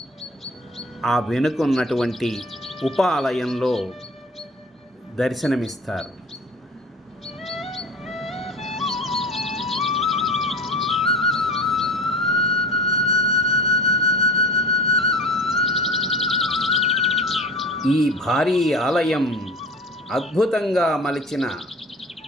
ఆ వెనుకున్నటువంటి ఉపాలయంలో దర్శనమిస్తారు. ఈ భారీ ఆలయం అద్భుతంగా మలిచిన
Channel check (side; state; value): both; normal; correlation 0.37